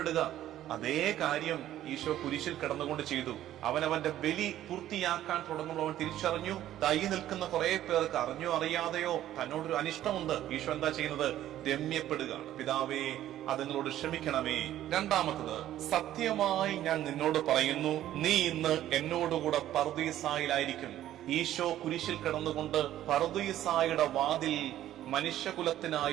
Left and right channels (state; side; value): quieter; left; 12.8 dB